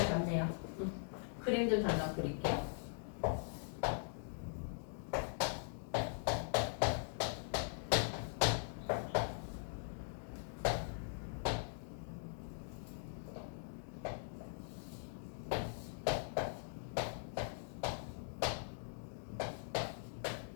같네요. 그림 좀 잠깐 그릴게요.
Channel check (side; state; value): right; silent; digital silence